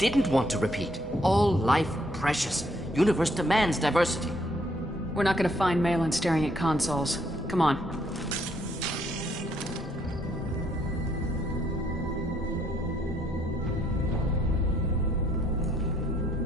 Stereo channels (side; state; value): both; normal; correlation 0.69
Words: want to repeat. All life precious. Universe demands diversity. We're not gonna find Malin staring at consoles. Come on.